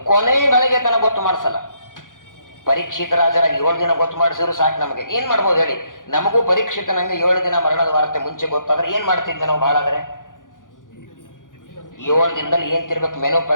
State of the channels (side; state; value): right; late; 0.88 ms